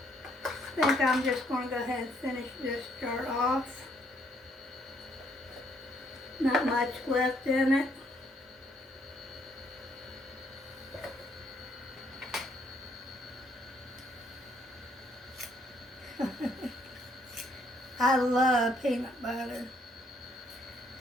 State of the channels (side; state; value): both; normal; correlation 0.69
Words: I think I'm just going to go ahead and finish this jar off. Not much left in it. I love peanut butter.